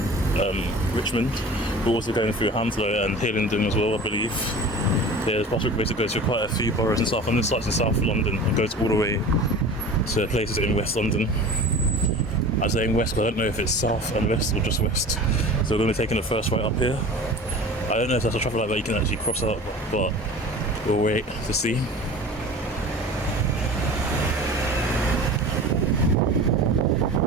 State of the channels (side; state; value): both; normal; correlation 0.38